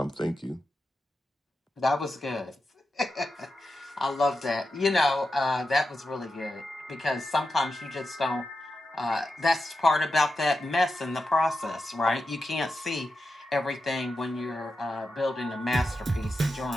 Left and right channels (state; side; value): normal; both; correlation 0.89